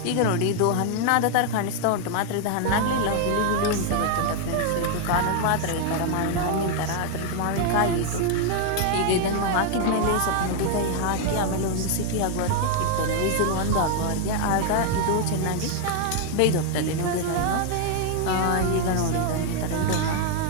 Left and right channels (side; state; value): both; different; correlation 0.00